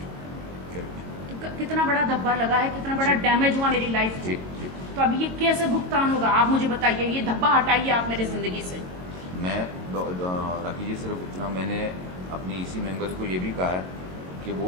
तो कितना बड़ा धब्बा लगा है, कितना बड़ा डैमेज हुआ मेरी लाइफ को। तो अब ये कैसे भुगतान होगा? आप मुझे बताइए, ये धब्बा हटाइए आप मेरी जिंदगी से। मैं राखी जी सिर्फ इतना, मैंने अपनी EC मेंबर्स को ये भी कहा है कि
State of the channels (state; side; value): late; left; 22 ms